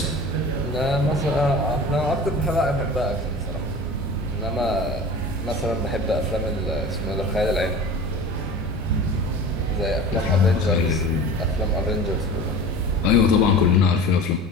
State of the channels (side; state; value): both; normal; correlation 0.37